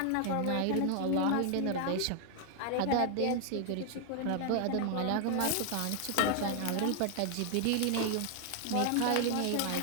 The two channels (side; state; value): both; different; correlation 0.00